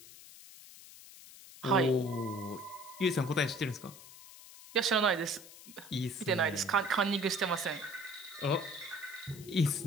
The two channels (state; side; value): noise; left; hiss, 18 dB below the sound